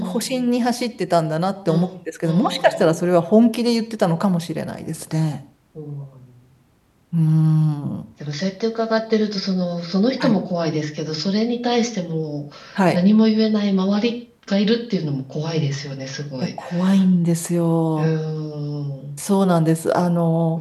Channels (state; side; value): identical; both; correlation 1.00